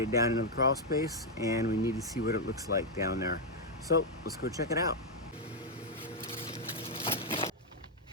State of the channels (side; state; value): both; normal; correlation -0.01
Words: it down into the crawl space, and we need to see what it looks like down there. So let's go check it out.